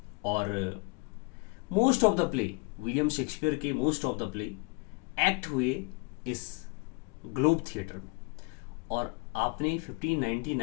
और most of the play, William Shakespeare के most of the play act हुए इस ग्लोब थिएटर में। और आपने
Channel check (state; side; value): quieter; right; 31.1 dB